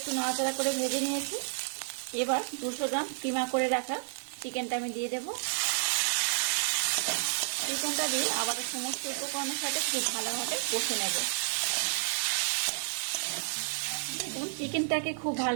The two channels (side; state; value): left; silent; 57 dB below the other